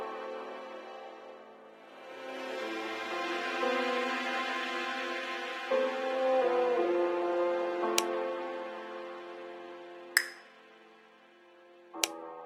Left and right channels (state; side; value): identical; both; correlation 1.00